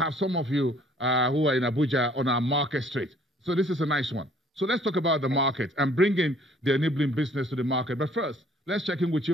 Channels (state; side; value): normal; both; correlation 0.58